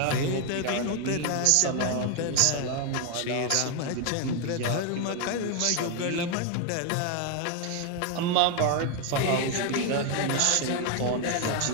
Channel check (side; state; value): both; different; correlation 0.01